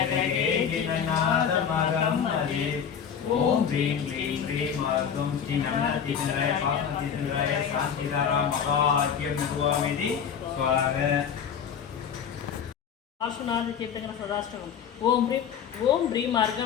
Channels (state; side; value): quieter; right; 7.7 dB